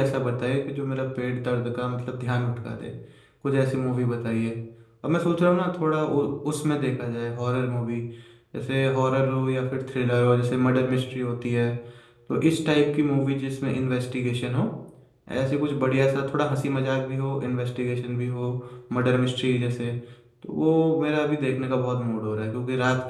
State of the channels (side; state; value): both; identical; correlation 1.00